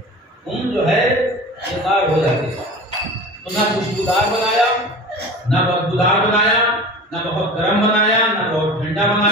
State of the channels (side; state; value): both; normal; correlation 0.36